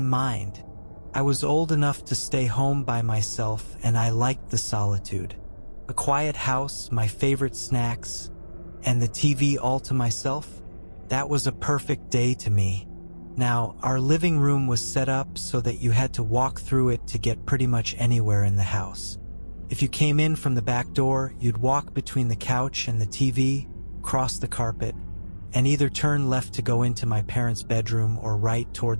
mind. I was old enough to stay home by myself, and I liked the solitude. A quiet house, my favorite snacks, and the TV all to myself. That was a perfect day to me. Now, our living room was set up so that you had to walk through it to get pretty much anywhere in the house. If you came in from the back door, you'd walk between the couch and the TV, cross the carpet, and either turn left to go into my parents' bedroom or right toward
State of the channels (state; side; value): inverted; both; correlation -1.00